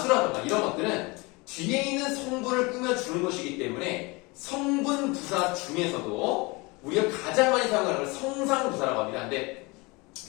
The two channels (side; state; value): right; quieter; 25.9 dB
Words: 이런 것들은 뒤에 있는 성분을 꾸며주는 것이기 때문에 성분부사 중에서도 우리가 가장 많이 사용하는 건 성상부사라고 합니다. 근데